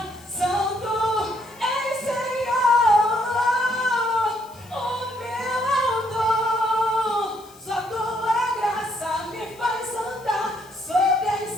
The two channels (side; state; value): left; noise; hiss, 25 dB below the sound